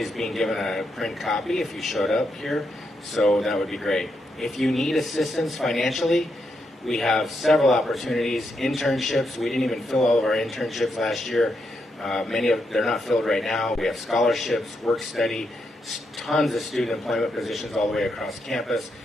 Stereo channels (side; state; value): both; normal; correlation 0.82